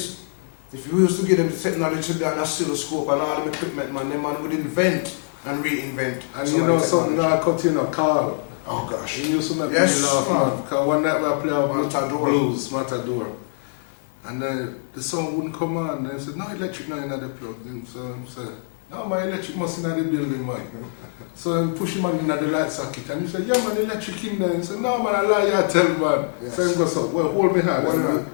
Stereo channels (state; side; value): silent; right; digital silence